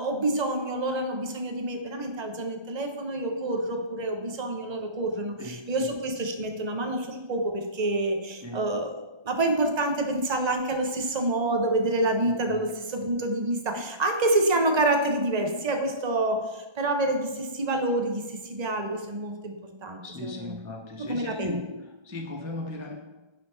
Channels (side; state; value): left; late; 1.3 ms